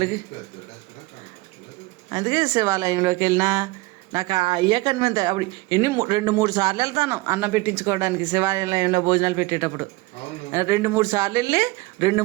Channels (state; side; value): quieter; left; 21.8 dB